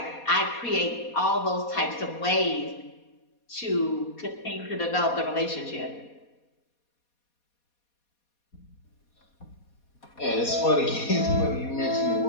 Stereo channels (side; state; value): right; late; 4.2 ms